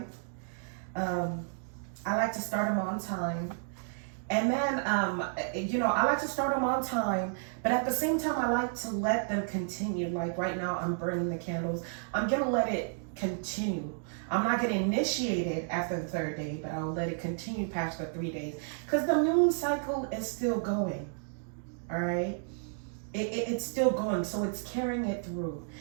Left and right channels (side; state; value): left; silent; digital silence